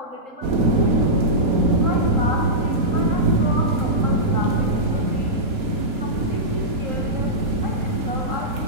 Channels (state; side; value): late; left; 4.2 ms